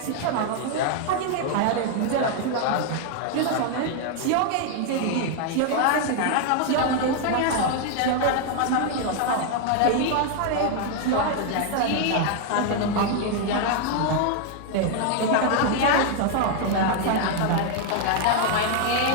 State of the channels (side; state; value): both; different; correlation 0.00